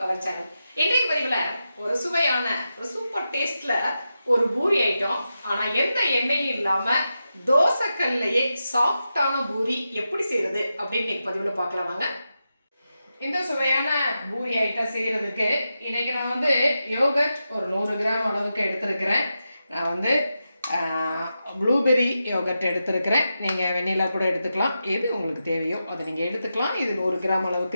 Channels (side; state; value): both; inverted; correlation -0.89